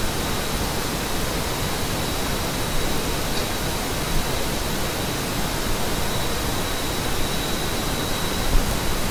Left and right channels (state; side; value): identical; both; correlation 1.00